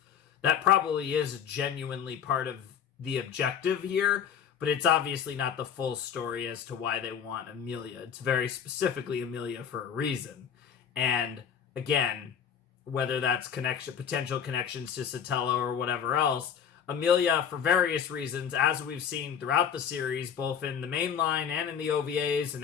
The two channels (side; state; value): right; quieter; 8.1 dB